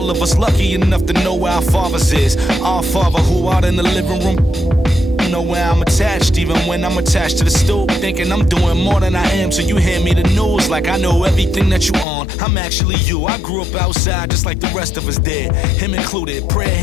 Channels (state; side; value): drops out; right; at 12.1 s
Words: of us lucky enough to know where our fathers is. Our father who out in the living room. Know where I'm attached, even when I'm attached to the stoop. Thinking I'm doing more than I am, so you hand me the news like I know everything that you on. I'm actually you. I grew up outside just like the rest of us did, him included. Prayer